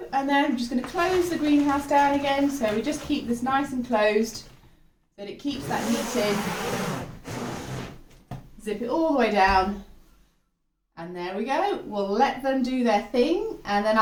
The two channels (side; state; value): both; identical; correlation 1.00